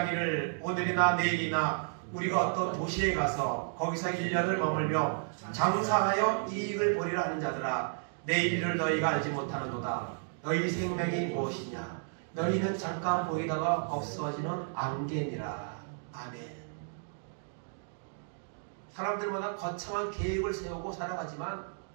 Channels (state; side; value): silent; left; digital silence